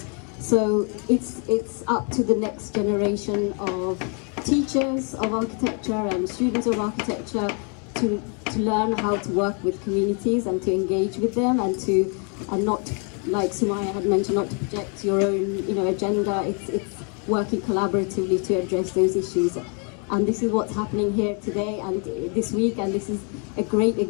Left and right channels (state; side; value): quieter; right; 37.8 dB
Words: So it's up to the next generation of teachers of architecture and students of architecture to learn how to work with communities and to engage with them, and not, like Sumayya had mentioned, not to project your own, you know, agenda. It's working collaboratively to address those issues. And this is what's happening here today and this week, and this is a great